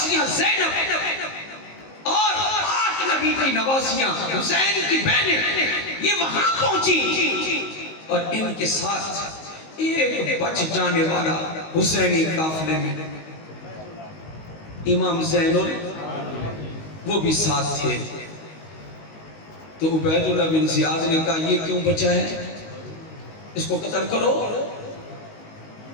زینب اور پاک نبی کی نواسیاں حسین کی بہنیں، یہ وہاں پہنچی، اور ان کے ساتھ ایک بچ جانے والا حسینی قافلے میں امام زین وہ بھی ساتھ تھے۔ تو عبید اللہ بن زیاد نے کہا یہ کیوں بچا ہے، اس کو قتل کرو،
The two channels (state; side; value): late; right; 19 ms